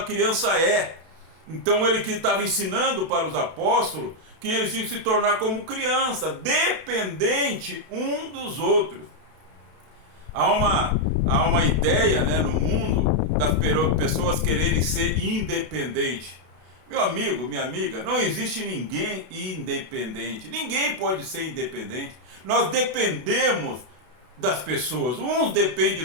criança é. Então ele que estava ensinando para os apóstolos que eles tinham que se tornar como criança, dependente um dos outros. Há uma ideia, né, no mundo das pessoas quererem ser independentes. Meu amigo, minha amiga, não existe ninguém independente. Ninguém pode ser independente. Nós dependemos das pessoas. Uns dependem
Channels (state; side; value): late; left; 32 ms